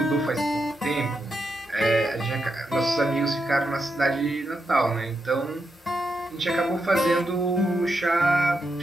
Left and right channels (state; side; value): normal; both; correlation 0.84